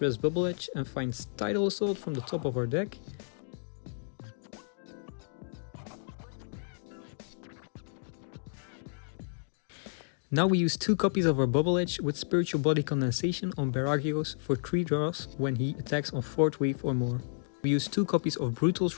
rests Bubble Edge and finds Tidal Assault from the top of our deck. Now we use 2 copies of our Bubble Edge with Spiritual Body Condensation on Baragios for 3 draws when he attacks on 4th wave or more. We use 2 copies of Brutal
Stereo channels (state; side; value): silent; right; digital silence